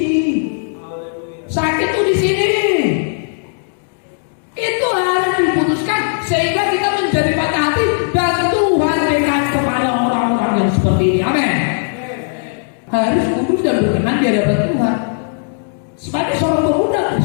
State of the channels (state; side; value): silent; right; digital silence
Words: Sakit tuh di sini. Itu harus diputuskan sehingga kita menjadi patah hati dan Tuhan dekat kepada orang-orang yang seperti ini. Amin. Harus kudus dan berkenan di hadapan Tuhan. Sebagai seorang pemuda